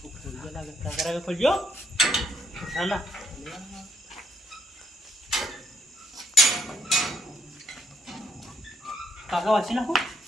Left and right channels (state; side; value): normal; both; correlation 0.73